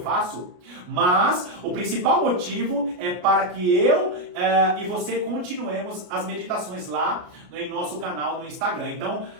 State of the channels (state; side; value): late; left; 33 ms